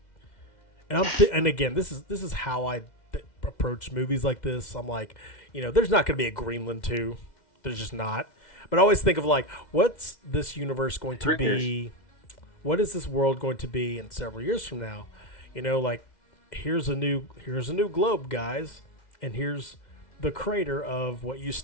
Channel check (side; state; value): right; late; 2.1 ms